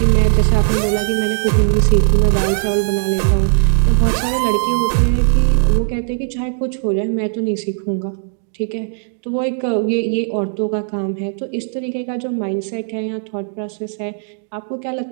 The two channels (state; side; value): silent; left; 68 dB below the other